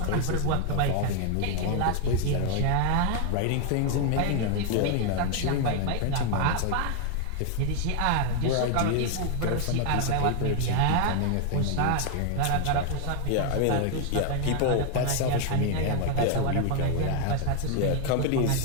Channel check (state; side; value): different; both; correlation 0.00